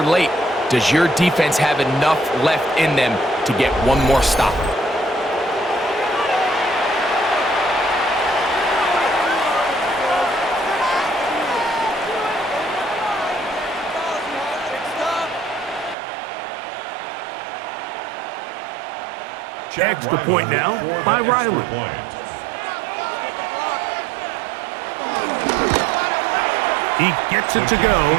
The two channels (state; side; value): drops out; left; at 16.0 s